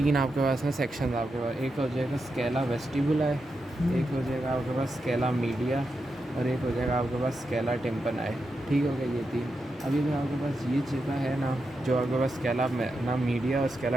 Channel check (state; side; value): normal; both; correlation 0.87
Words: आपके पास ना सेक्शन आपके पास, एक हो जाएगा स्केला वेस्टिबुला है, एक हो जाएगा आपके पास स्केला मीडिया, और एक हो जाएगा आपके पास स्केला टिम्पनाई। ठीक हो गया ये 3। अभी जो आपके पास ये जगह है ना, जो आपके पास स्केला ना मीडिया और